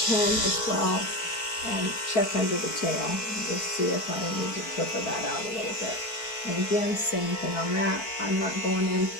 pin as well and check under the tail and just see if I need to clipper that out a little bit. And again, same thing on that. I'm not going in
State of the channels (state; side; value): late; right; 4.5 ms